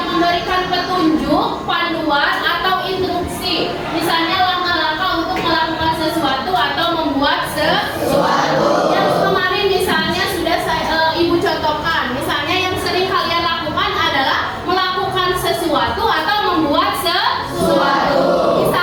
memberikan petunjuk, panduan atau instruksi. Misalnya langkah-langkah untuk melakukan sesuatu atau membuat sesuatu. Yang kemarin misalnya sudah Ibu contohkan. Misalnya yang sering kalian lakukan adalah melakukan sesuatu atau membuat sesuatu.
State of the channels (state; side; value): identical; both; correlation 1.00